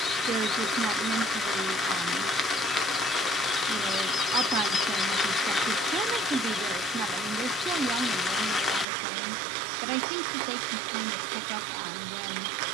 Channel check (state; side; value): drops out; left; at 8.8 s